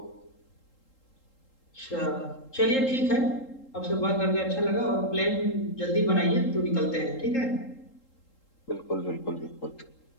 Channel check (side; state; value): right; late; 3.8 ms